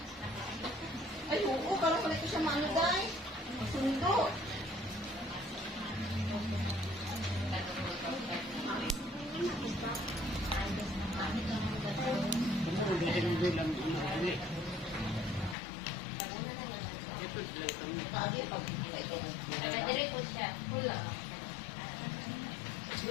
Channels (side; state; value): right; drops out; at 15.6 s